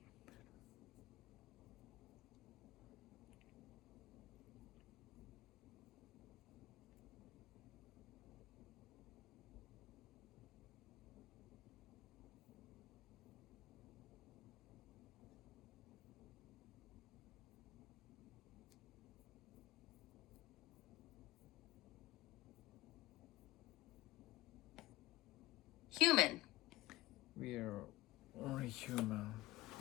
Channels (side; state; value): right; quieter; 18.6 dB